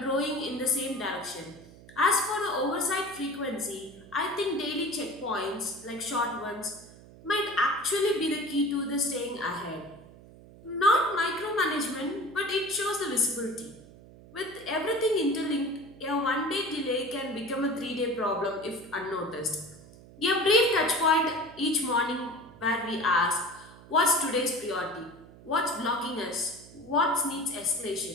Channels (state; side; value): noise; right; hum, 20 dB below the sound